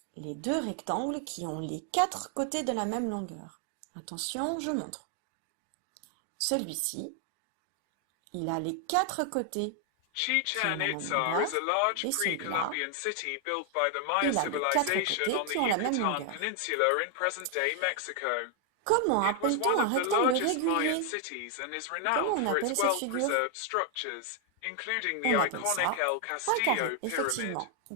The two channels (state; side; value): different; both; correlation 0.00